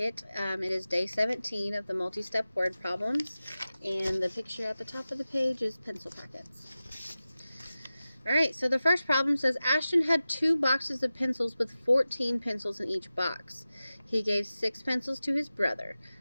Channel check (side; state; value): both; inverted; correlation -0.95